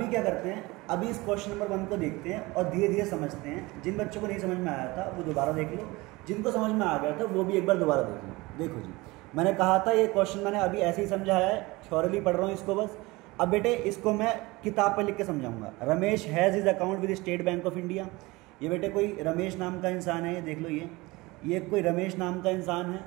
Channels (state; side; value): quieter; left; 22.3 dB